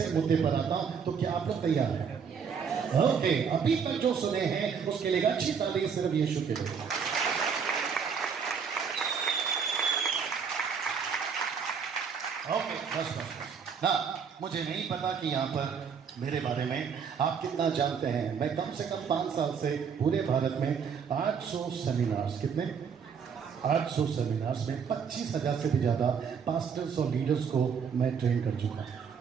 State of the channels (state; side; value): quieter; left; 6.6 dB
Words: मुद्दे पर आता हूं, तो क्या आप लोग तैयार हैं? ओके, अभी तक जो सुने हैं उसके लिए अच्छी ताली सिर्फ यीशु के लिए। ओके, बस ना, मुझे नहीं पता कि यहाँ पर मेरे बारे में आप कितना जानते हैं। मैं कम से कम 5 साल से पूरे भारत में 800 सेमिनार्स, कितने 800 सेमिनार्स में 25,000 से भी ज़्यादा पास्टर्स और लीडर्स को मैं ट्रेन कर चुका